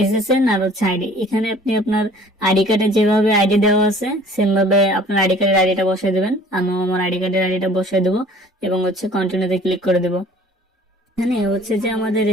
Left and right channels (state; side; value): normal; both; correlation 0.51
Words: এসএসএন আর হচ্ছে আইডি। এখানে আপনি আপনার আইডি কার্ডে যেভাবে আইডি দেওয়া আছে সেম ভাবে আপনার আইডি কার্ডের আইডিটা বসিয়ে দেবেন। আমিও আমার আইডি কার্ডের আইডিটা বসিয়ে দেবো এবং হচ্ছে কন্টিনিউতে ক্লিক করে দেবো। এখানে হচ্ছে যে আমাদের